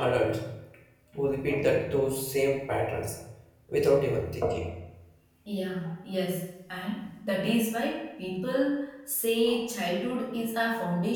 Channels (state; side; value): identical; both; correlation 1.00